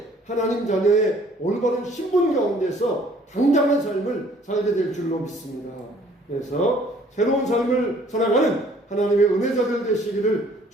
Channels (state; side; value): normal; both; correlation 0.58